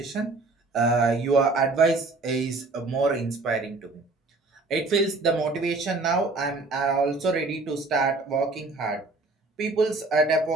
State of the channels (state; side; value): quieter; left; 3.4 dB